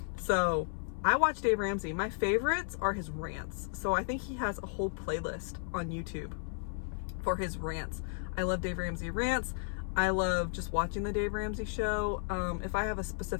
So I watch Dave Ramsey. My favorites are his rants. So I think he has a whole playlist on YouTube for his rants. I love Dave Ramsey rants. I love just watching the Dave Ramsey show. If I have a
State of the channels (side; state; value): right; silent; 55 dB below the other